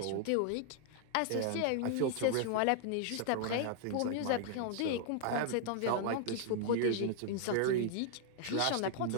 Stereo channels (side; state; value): both; different; correlation 0.00